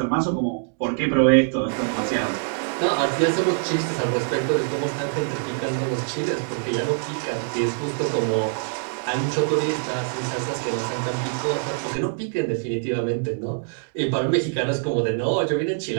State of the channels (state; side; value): silent; left; digital silence